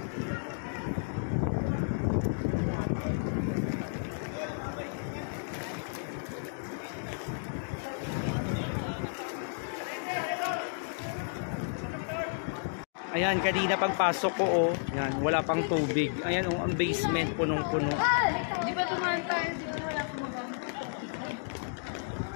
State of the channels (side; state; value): right; silent; digital silence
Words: Ayan, kanina pagpasok ko, oh, yan, wala pang tubig. Ayan, oh, ang basement punong-puno. Di ba tumahan tayo? Di ba wala akong magamit?